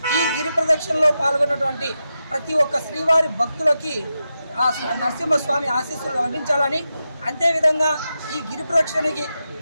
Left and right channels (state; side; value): inverted; both; correlation -0.89